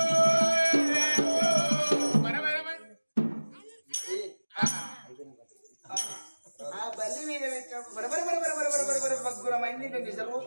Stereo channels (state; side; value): inverted; both; correlation -1.00